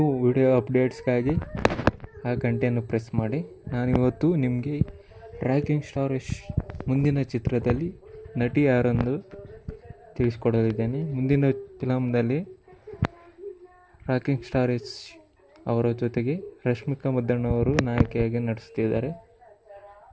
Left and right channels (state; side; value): identical; both; correlation 1.00